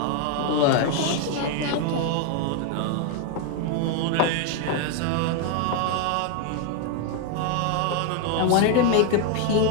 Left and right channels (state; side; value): different; both; correlation 0.01